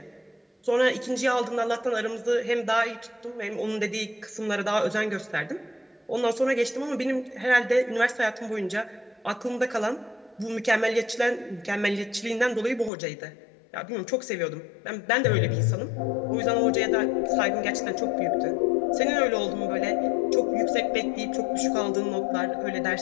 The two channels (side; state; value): right; drops out; at 12.9 s